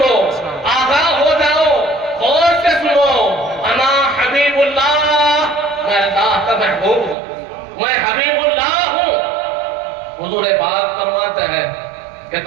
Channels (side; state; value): left; drops out; at 7.2 s